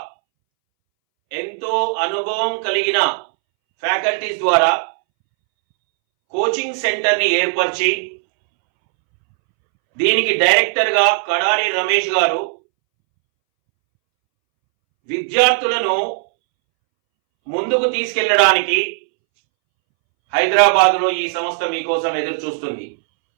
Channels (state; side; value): silent; left; 66 dB below the other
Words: ఎంతో అనుభవం కలిగిన ఫ్యాకల్టీస్ ద్వారా కోచింగ్ సెంటర్ని ఏర్పరిచి దీనికి డైరెక్టర్గా కడారి రమేష్ గారు విద్యార్థులను ముందుకు తీసుకెళ్లడానికి హైదరాబాద్లో ఈ సంస్థ మీకోసం ఎదురు చూస్తుంది.